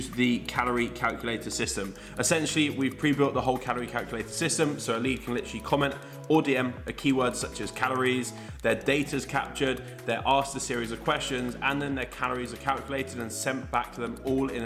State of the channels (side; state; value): both; identical; correlation 1.00